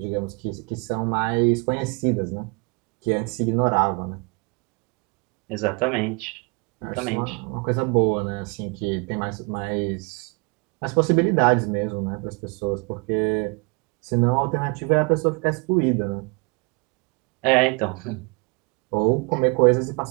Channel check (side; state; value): left; quieter; 31.4 dB